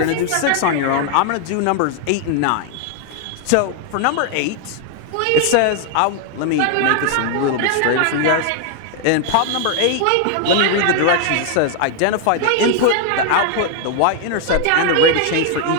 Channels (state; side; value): different; both; correlation 0.00